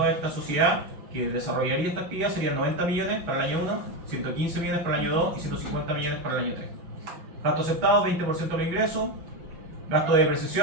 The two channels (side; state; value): left; late; 6.2 ms